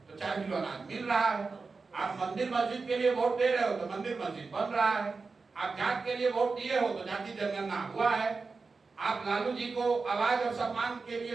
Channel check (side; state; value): left; quieter; 4.3 dB